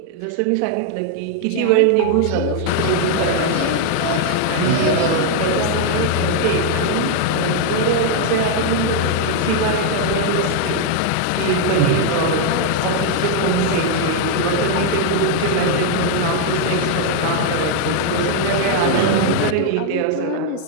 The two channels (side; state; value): both; different; correlation 0.00